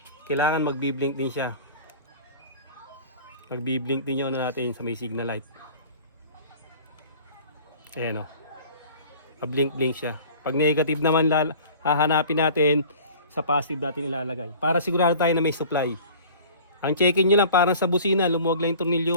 kailangan magbi-blink din siya. Magbi-blink din yun natin sa may signal light. Ayan o. Blink-blink siya. Pag negative naman, hahanapin natin sa positive natin ilalagay. Para sigurado tayo na may supply. Ang check-in nyo lang, parang sa busina, lumuwag lang yung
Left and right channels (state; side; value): inverted; both; correlation -0.44